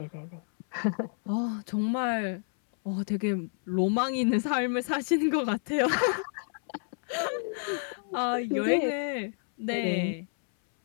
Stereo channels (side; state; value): right; silent; 58 dB below the other